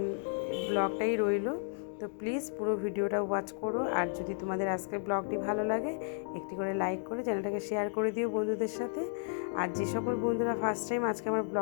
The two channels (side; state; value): right; silent; 55 dB below the other